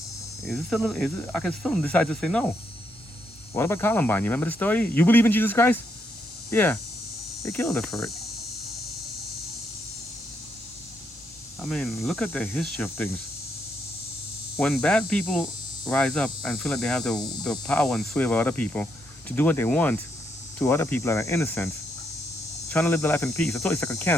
I can still decide to say no. What about Columbine? You remember the story? You believe in Jesus Christ? Yeah. They killed her for it. I mean, look at the history of things. When bad people rise up and feel like they have the power and sway over other people to do what they want to other people that are innocent, trying to live their life in peace, I thought it's like a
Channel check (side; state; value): both; normal; correlation 0.77